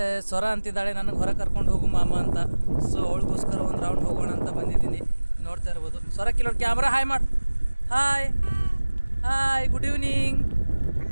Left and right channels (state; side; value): inverted; both; correlation -1.00